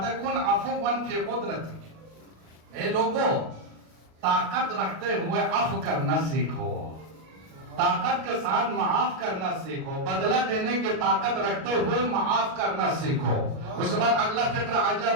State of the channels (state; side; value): late; left; 37 ms